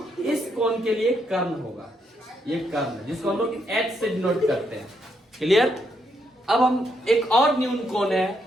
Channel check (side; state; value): both; normal; correlation 0.77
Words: इस कोण के लिए कर्ण होगा, ये कर्ण जिसको हम लोग एच से डिनोट करते हैं। क्लियर। अब हम एक और न्यून कोण है